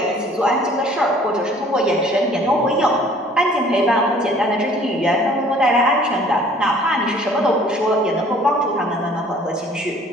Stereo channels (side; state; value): both; normal; correlation 0.54